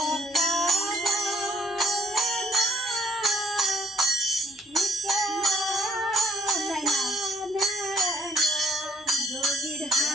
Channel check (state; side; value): normal; both; correlation 0.65